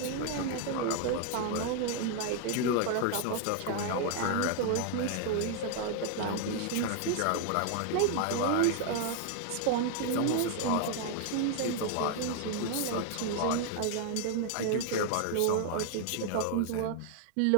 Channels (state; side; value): different; both; correlation 0.00